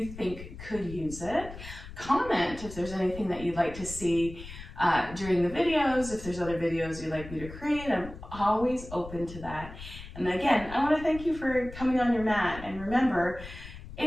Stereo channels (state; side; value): noise; left; rumble, 13 dB below the sound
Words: think could use it. Comment if there's anything that you'd like to see during the videos. If there's other videos you'd like me to create, I'm always open to that. And again, I want to thank you for coming on your mat. And remember,